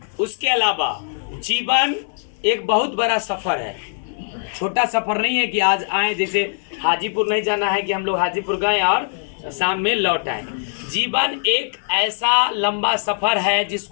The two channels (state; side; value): silent; right; digital silence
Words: उसके अलावा जीवन एक बहुत बड़ा सफर है, छोटा सफर नहीं है कि आज आए, जैसे हाजीपुर नहीं जाना है कि हम लोग हाजीपुर गए और शाम में लौट आए। जीवन एक ऐसा लंबा सफर है